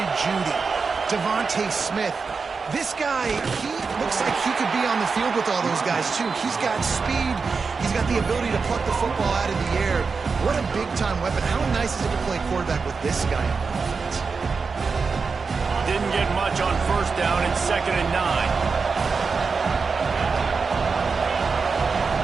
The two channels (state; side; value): quieter; left; 4.9 dB